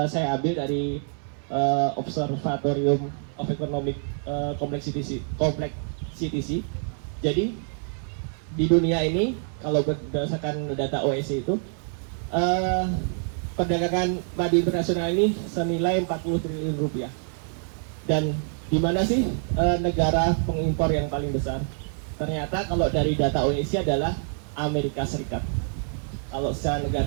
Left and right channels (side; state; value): left; silent; 61 dB below the other